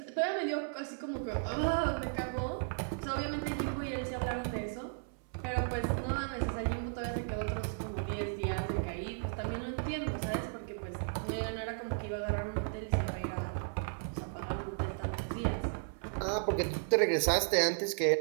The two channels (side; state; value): left; silent; 54 dB below the other